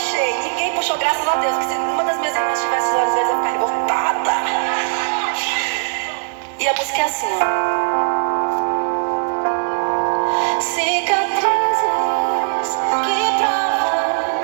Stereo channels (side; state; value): left; silent; 66 dB below the other